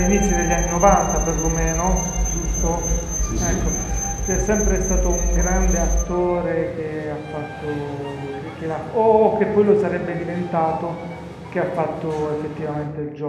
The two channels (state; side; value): identical; both; correlation 1.00